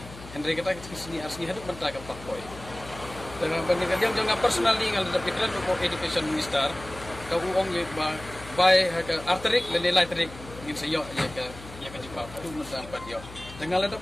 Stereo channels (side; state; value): left; noise; hum, 15 dB below the sound